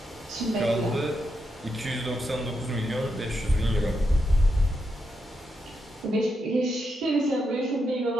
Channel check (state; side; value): normal; both; correlation 0.84